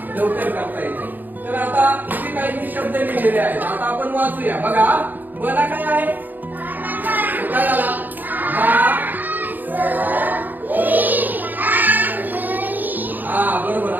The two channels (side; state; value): left; late; 0.086 ms